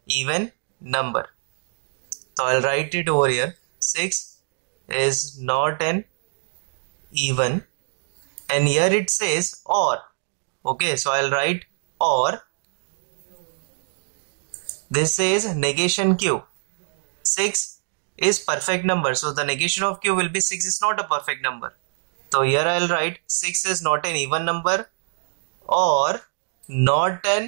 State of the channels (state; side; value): silent; left; digital silence